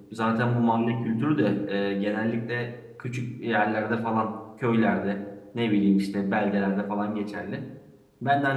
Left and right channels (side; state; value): both; identical; correlation 1.00